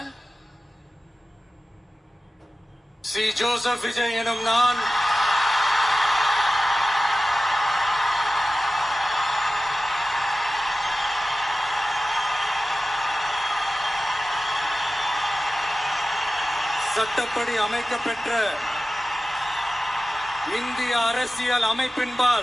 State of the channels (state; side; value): normal; both; correlation 0.95